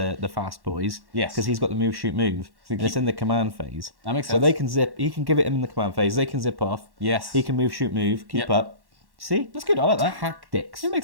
fast boys. Yes. Because he's got the move, shoot, move. And it's in the command phase. That makes So sense. they can zip. He can give it him in the command phase. They can zip off. Yes. He can move, shoot, move. Keep Yep. up. See? That's good. I like that. Tactics. It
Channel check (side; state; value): left; late; 1.1 ms